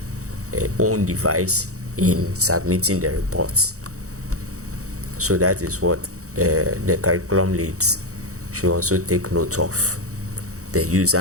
own device in submitting the reports. So that is what the curriculum leads should also take note of the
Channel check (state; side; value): late; left; 0.65 ms